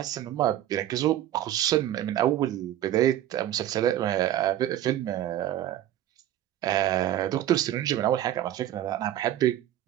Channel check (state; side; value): quieter; left; 12.5 dB